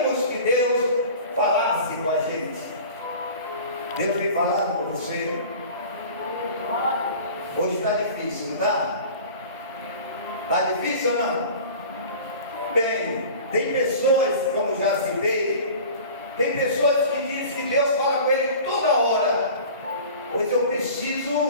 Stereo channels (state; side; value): inverted; both; correlation -0.40